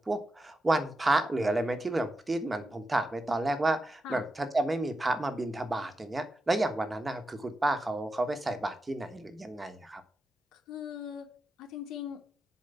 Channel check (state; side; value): normal; both; correlation 0.88